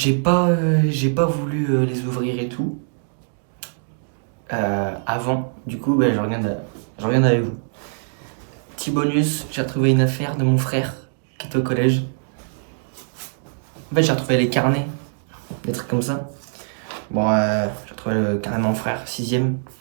pas voulu les ouvrir et tout avant. Du coup, je regarde avec vous. Petit bonus, j'ai retrouvé une affaire de mon frère qui était au collège. En fait, j'ai retrouvé les carnets, des trucs comme ça. Bon, j'ai retrouvé le carnet de mon frère, sixième.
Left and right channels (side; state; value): left; silent; digital silence